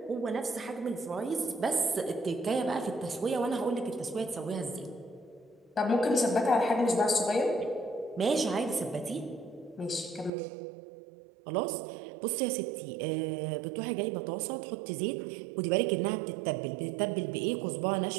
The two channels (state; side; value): drops out; left; at 10.3 s